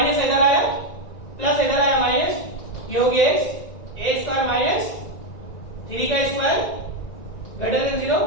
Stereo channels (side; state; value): right; late; 1.9 ms